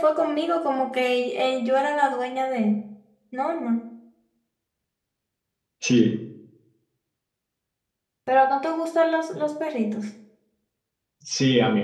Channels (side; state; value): both; identical; correlation 1.00